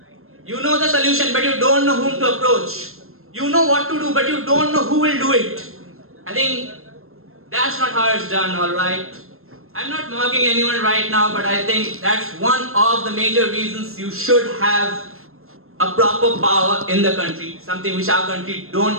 You know the solution, but you don't know whom to approach. You know what to do, but you don't know who will do it. I think that's not how it's done, alright? I'm not mocking anyone right now, but I think that's one of the major reasons you should have a proper power in the country, something which our country don't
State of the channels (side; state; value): left; late; 0.62 ms